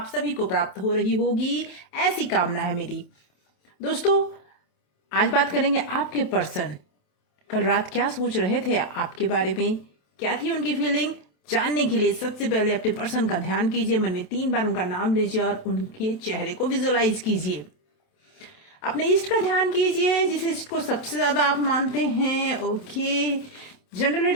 सभी को प्राप्त हो रही होगी, ऐसी कामना है मेरी। दोस्तों, आज बात करेंगे आपके पर्सन कल रात क्या सोच रहे थे आपके बारे में, क्या थी उनकी फीलिंग। जानने के लिए सबसे पहले अपने पर्सन का ध्यान कीजिए, मन में 3 बार उनका नाम लीजिए और उनके चेहरे को विजुअलाइज कीजिए। अपने इष्ट का ध्यान कीजिए, जिस इष्ट को सबसे ज्यादा आप मानते हैं। ओके, जनरल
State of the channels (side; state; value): right; late; 27 ms